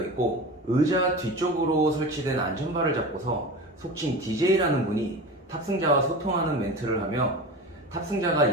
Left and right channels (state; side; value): normal; both; correlation 0.30